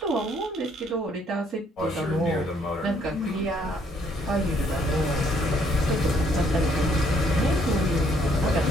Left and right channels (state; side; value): normal; both; correlation 0.67